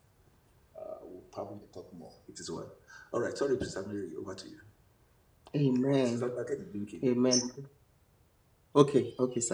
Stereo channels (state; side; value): identical; both; correlation 1.00